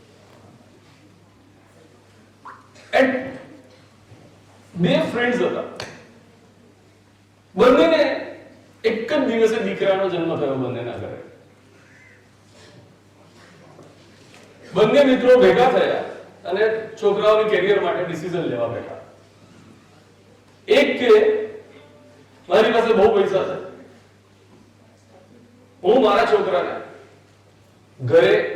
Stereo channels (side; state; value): both; identical; correlation 1.00